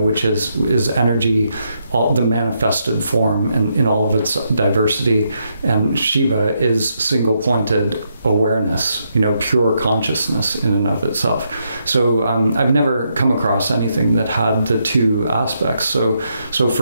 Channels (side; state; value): both; inverted; correlation -0.79